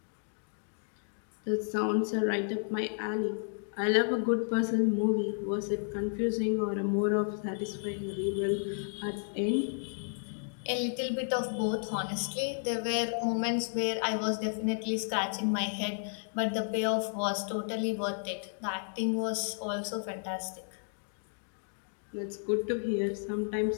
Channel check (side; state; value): right; silent; digital silence